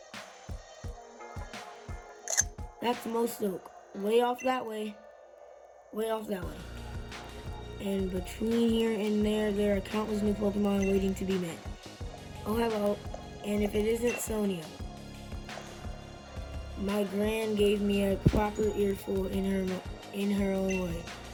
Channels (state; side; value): identical; both; correlation 1.00